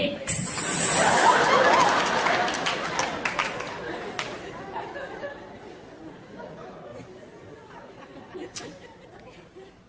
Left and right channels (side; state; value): both; identical; correlation 1.00